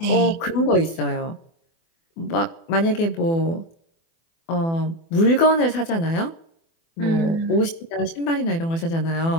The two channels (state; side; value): late; right; 24 ms